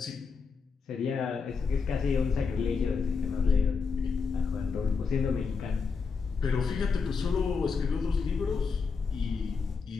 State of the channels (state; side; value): quieter; right; 5.1 dB